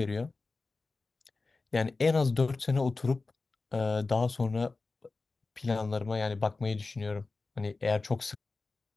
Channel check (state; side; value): quieter; right; 3.7 dB